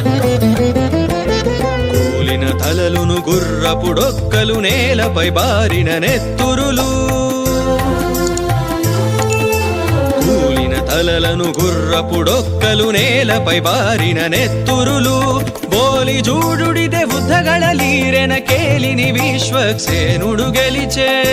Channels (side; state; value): both; identical; correlation 1.00